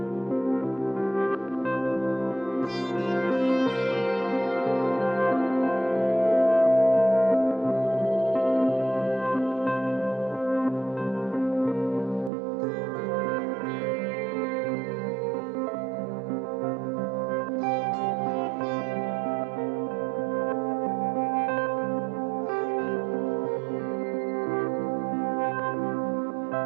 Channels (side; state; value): left; drops out; at 12.3 s